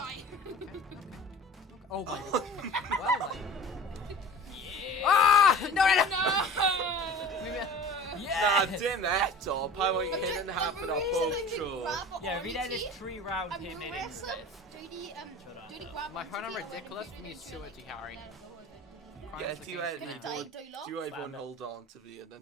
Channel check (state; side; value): normal; both; correlation 0.40